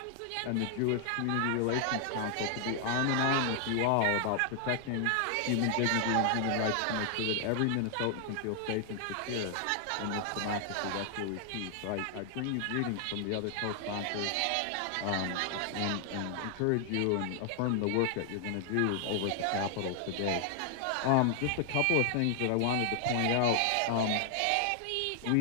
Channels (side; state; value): both; different; correlation 0.00